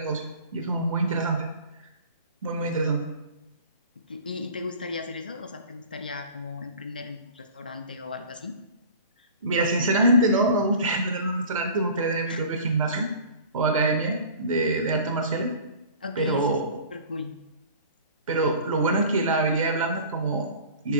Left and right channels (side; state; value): both; inverted; correlation -0.42